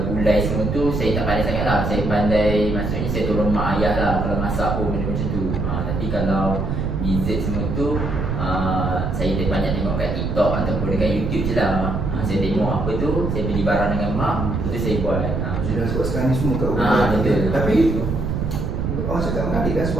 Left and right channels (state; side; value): noise; right; rumble, 2 dB below the sound